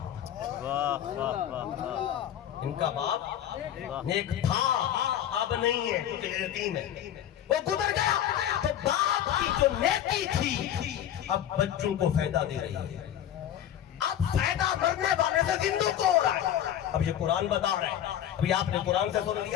واہ واہ واہ واہ. ان کا باپ نیک تھا، اب نہیں ہے کیونکہ یتیم ہے، وہ گزر گیا. تو باپ کی جو نیکی تھی اب بچوں کو فائدہ دے رہی ہے. اب فائدہ مرنے والے سے زندوں کو ہو رہا ہے. اب یہ قرآن بتا رہا ہے. ابھی آپ نے قرآن سے سن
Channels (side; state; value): right; quieter; 10.8 dB